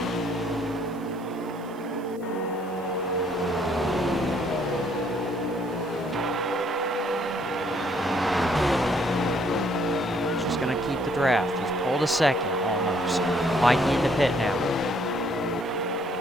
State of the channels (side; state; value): right; noise; hiss, 27 dB below the sound